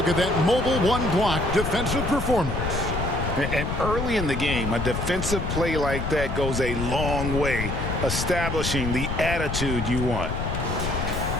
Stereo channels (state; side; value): noise; left; rumble, 3 dB below the sound